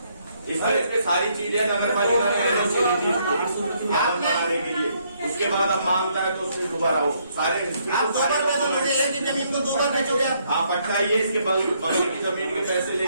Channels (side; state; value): both; inverted; correlation -0.71